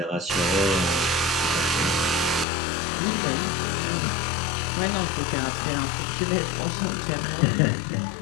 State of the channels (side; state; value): right; drops out; at 2.5 s